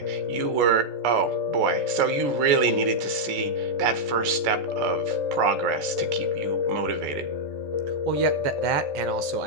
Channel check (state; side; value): late; left; 14 ms